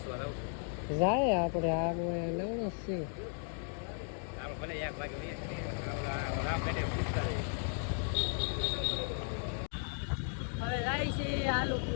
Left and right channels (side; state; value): right; silent; 54 dB below the other